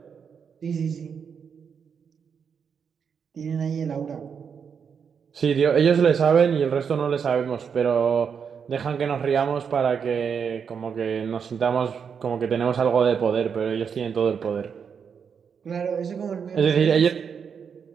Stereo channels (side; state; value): left; quieter; 6.8 dB